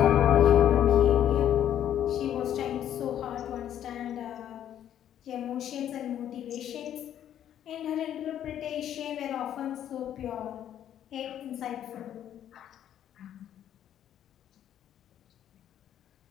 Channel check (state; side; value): quieter; right; 10.6 dB